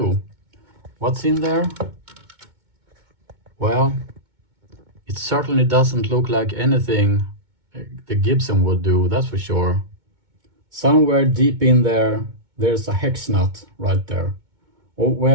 What's in there? Well, it certainly doesn't look like anything the Gibson would do, that's for sure. Somewhere deep in there, there's a hex nut right there. Oh,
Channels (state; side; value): late; left; 2.2 ms